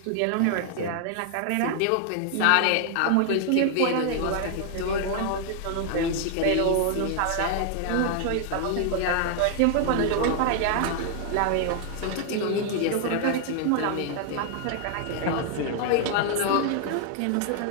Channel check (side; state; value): both; different; correlation 0.00